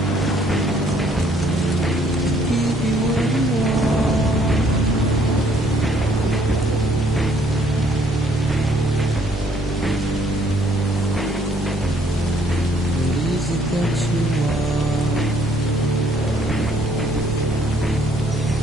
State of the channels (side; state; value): both; normal; correlation 0.64